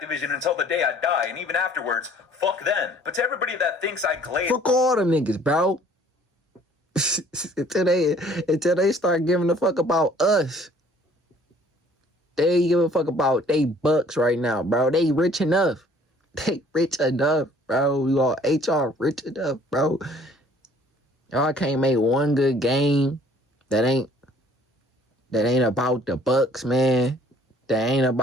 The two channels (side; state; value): both; normal; correlation 0.56